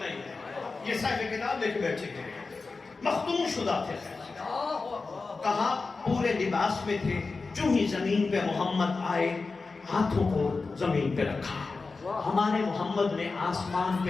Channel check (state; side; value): quieter; right; 4.1 dB